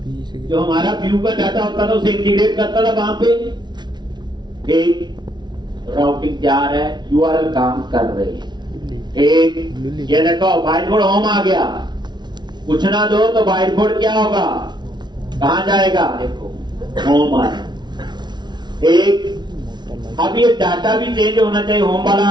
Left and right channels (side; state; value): left; late; 0.21 ms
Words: जो हमारा व्यू का डाटा होता था उसे इंटीग्रेट करता था वहां पे। एक राउटिंग तैयार है, यूआरएल काम कर रहे हैं, एक ये देखो बाइट बोर्ड होम आ गया, कुछ ना दो तो बाइट बोर्ड क्या होगा, कहां जाएगा, देखो होम आ, एक, अब ये डाटा भी चेंज होना चाहिए, होम वाला